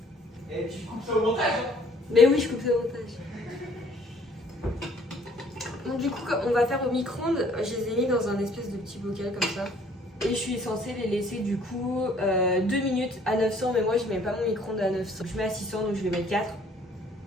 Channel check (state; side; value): normal; both; correlation 0.59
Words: au micro-ondes, je les ai mis dans un espèce de petit bocal comme ça. Et je suis censée les laisser du coup 2 minutes à 900, mais moi je mets pas mon micro-ondes à 900. Je mets à 600, donc je vais mettre 4.